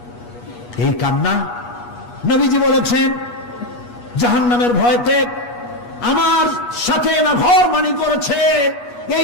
এই কান্না, নবীজি বলেছেন জাহান্নামের ভয়তে আমার সাথে না ভরমানি করেছে।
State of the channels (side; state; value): right; late; 8.3 ms